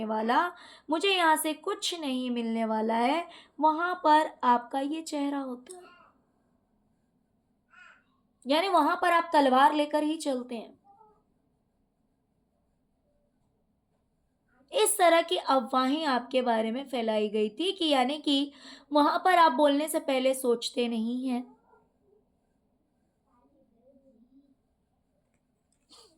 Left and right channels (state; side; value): identical; both; correlation 1.00